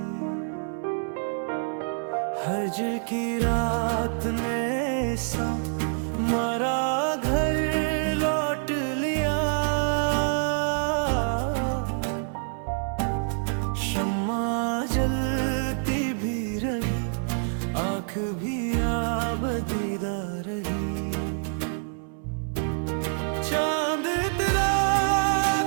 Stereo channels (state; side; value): silent; left; 59 dB below the other